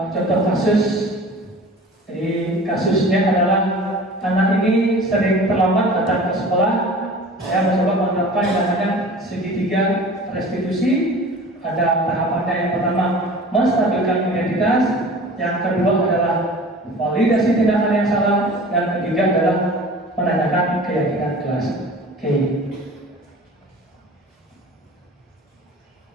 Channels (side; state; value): both; normal; correlation 0.41